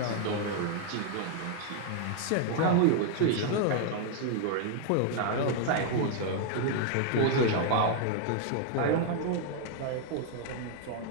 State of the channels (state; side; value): different; both; correlation 0.00